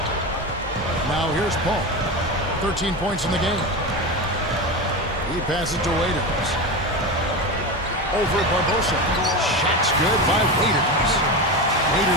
Now here's Paul. 13 points in the game. He passes to Waiters. Over Barbosa. Shot's good by Waiters.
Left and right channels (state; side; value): normal; both; correlation 0.21